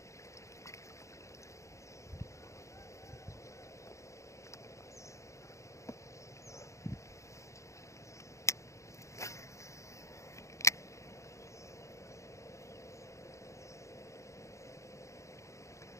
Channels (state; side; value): late; right; 0.15 ms